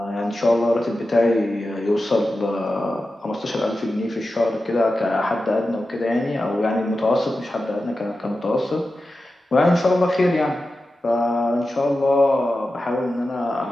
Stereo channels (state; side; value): normal; both; correlation 0.92